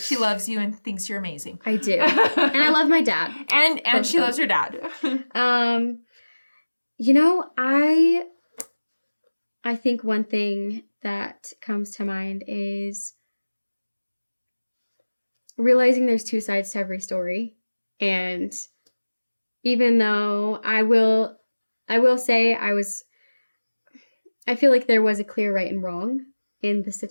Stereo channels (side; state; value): both; inverted; correlation -1.00